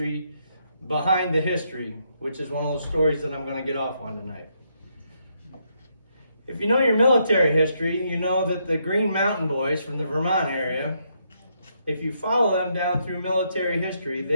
behind the history, which is one of those stories that I'm going to get off on tonight. If you know your military history, you know that the Green Mountain Boys from the Vermont area, if you follow them down through military history,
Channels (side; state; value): both; inverted; correlation -0.76